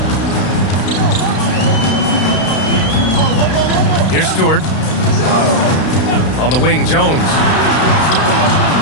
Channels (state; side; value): late; right; 32 ms